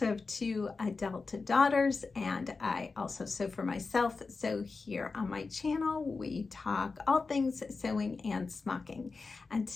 have two adult daughters, and I also sew for myself. So here on my channel, we talk all things sewing and smocking. And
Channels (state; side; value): quieter; right; 4.3 dB